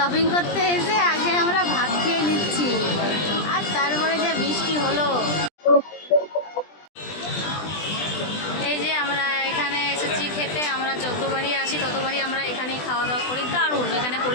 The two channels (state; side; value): late; right; 20 ms